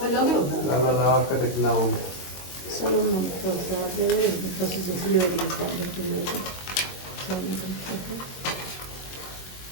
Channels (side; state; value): right; late; 22 ms